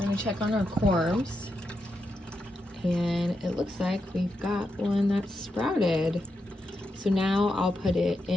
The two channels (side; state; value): both; normal; correlation 0.85